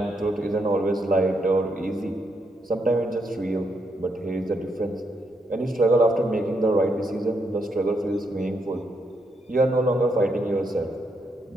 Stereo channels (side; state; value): both; normal; correlation 0.78